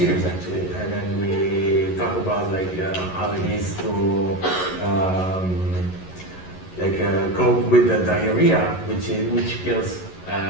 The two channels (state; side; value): late; right; 11 ms